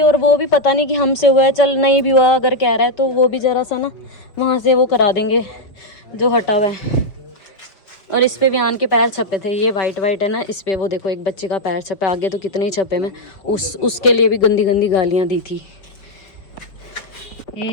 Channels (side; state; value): right; late; 5.2 ms